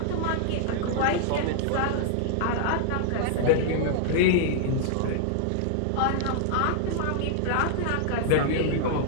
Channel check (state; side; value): different; both; correlation -0.01